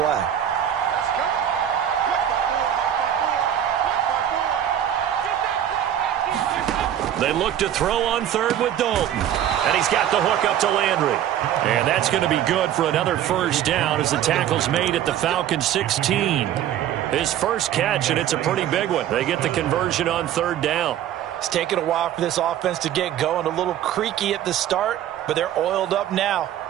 They look to throw on 3rd with Dalton. And he's got the hook up to Landry. And that's going to be good for another 1st down as the tackle's made at the Falcons 16. His first catch, and it's a pretty big one. They get the conversion on 3rd down. It's taken a while for this offense to get going. A little creaky at the start, but they're oiled up now.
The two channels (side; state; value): left; quieter; 10.7 dB